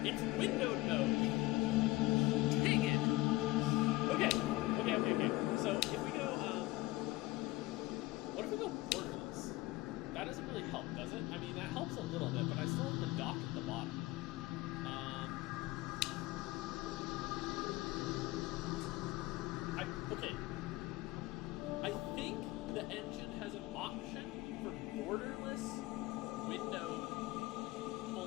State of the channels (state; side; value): quieter; right; 19.8 dB